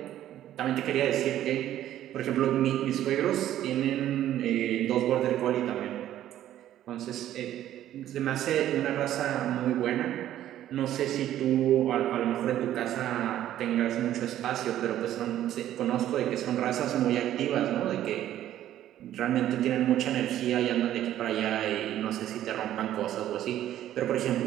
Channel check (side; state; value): left; quieter; 12.3 dB